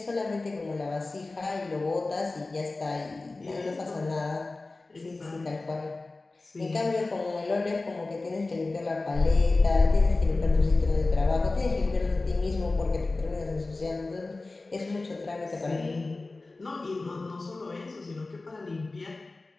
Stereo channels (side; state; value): right; quieter; 3.3 dB